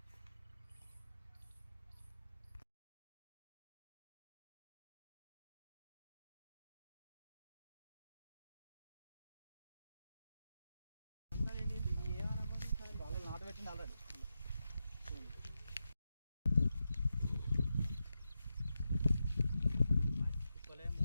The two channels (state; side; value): inverted; both; correlation -0.89